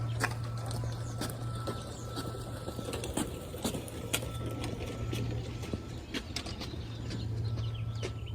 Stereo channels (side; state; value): both; identical; correlation 1.00